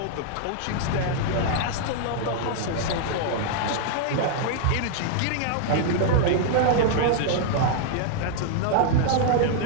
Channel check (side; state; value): both; different; correlation -0.01